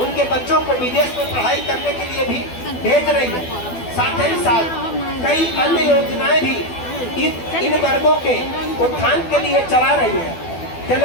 उनके बच्चों को विदेश में पढ़ाई करने के लिए भी भेज रही है। साथ ही साथ कई अन्य योजनाएं भी इन वर्गों के उत्थान के लिए चला रही है।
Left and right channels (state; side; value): late; right; 12 ms